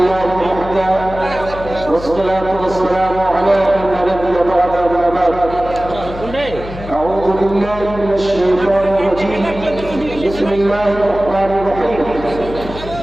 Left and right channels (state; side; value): noise; left; hum, 12 dB below the sound